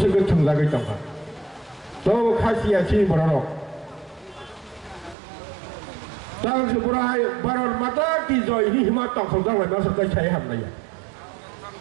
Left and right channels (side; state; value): left; drops out; at 5.2 s